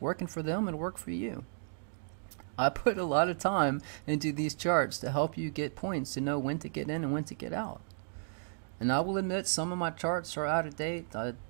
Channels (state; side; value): silent; left; digital silence